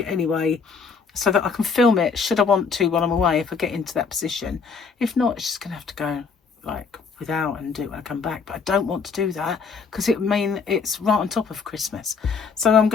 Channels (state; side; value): quieter; right; 5.3 dB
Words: anyway, so that I can film it should I want to while I'm away, if I get into that position. If not, it's just going to have to go like without and do it when I come back. But I don't want to do that because it would mean it's right on top of Christmas. So I'm